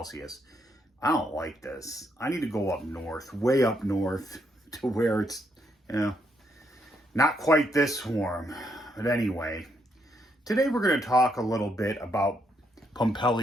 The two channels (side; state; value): both; normal; correlation 0.76